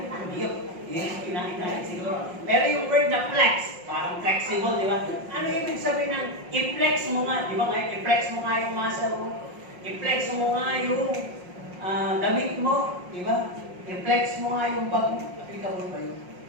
Yun kinain natin siguro. Pero yung word na flex, parang flexible, di ba? Ano ibig sabihin ng i-flex mo nga? Di ba nga, i-flex mo nga yung muscle mo. I-flex mo nga yung damit mo, di ba? I-flex mo nga yung bag mo. Applicable ba yun?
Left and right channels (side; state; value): left; late; 5.5 ms